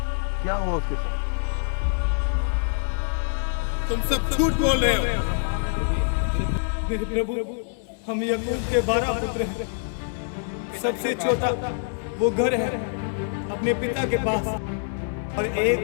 क्या हुआ उसके साथ? तुम सब झूठ बोल रहे हो। मेरे प्रभु, हम याकूब के 12 पुत्र हैं। सबसे छोटा वो घर है अपने पिता के पास, और एक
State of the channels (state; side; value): silent; right; digital silence